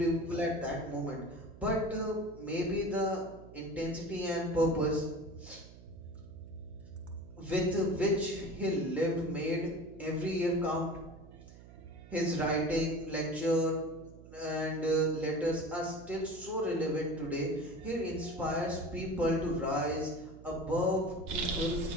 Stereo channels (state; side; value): noise; right; hum, 18 dB below the sound